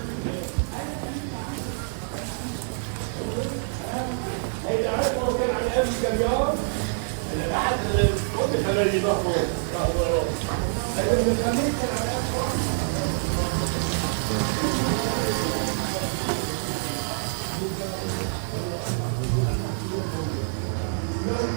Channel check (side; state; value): left; silent; digital silence